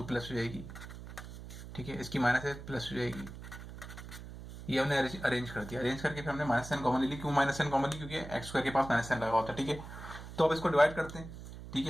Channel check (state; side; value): noise; right; hum, 12 dB below the sound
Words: प्लस हो जाएगी, ठीक है, इसकी माइनस है प्लस हो जाएगी, ये हमने अरेंज कर दिया, अरेंज करके फिर हमने माइनस साइन कॉमन ले ली, क्यों माइनस साइन कॉमन ली, क्योंकि x स्क्वायर के पास माइनस साइन लगा होता है, ठीक है। तो अब इसको डिवाइड करते हैं, ठीक